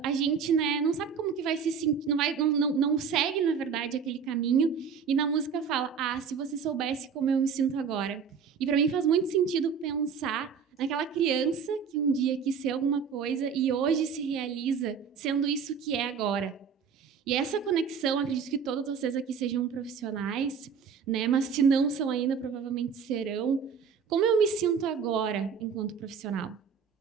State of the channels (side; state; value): left; quieter; 6.5 dB